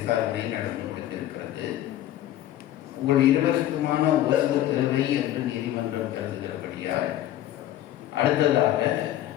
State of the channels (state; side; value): quieter; right; 13.0 dB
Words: நடந்து முடிந்திருக்கிறது. உங்கள் இருவருக்குமான ஓய்வு தேவை என்று நீதிமன்றம் கருதுகிறபடியால், அடுத்ததாக